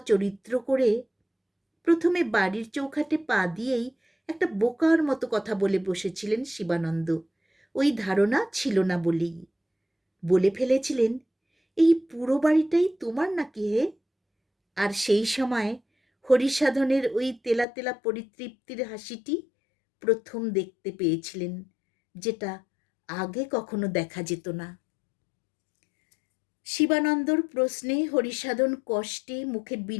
চরিত্র করে প্রথমে বাড়ির চৌখাটে পা দিয়েই একটা বোকার মতো কথা বলে বসেছিলেন শিবানন্দ। ওই ধারণা ছিল না বলেই বলে ফেলেছিলেন, এই পুরো বাড়িটাই তোমার নাকি হে? আর সেই সময় হরিসাধনের ওই তেলা তেলা পরিতৃপ্তির হাসিটি প্রথম দেখতে পেয়েছিলেন, যেটা আগে কখনো দেখা যেত না। শিবানন্দর প্রশ্নে হরিসাধন কষ্টে মুখে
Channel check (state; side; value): drops out; right; at 17.7 s